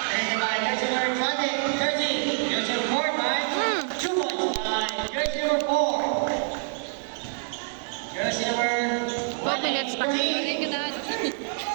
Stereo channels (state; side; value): silent; left; digital silence